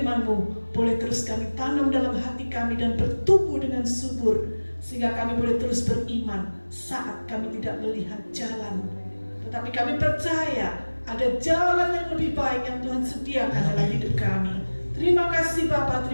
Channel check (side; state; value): both; inverted; correlation -1.00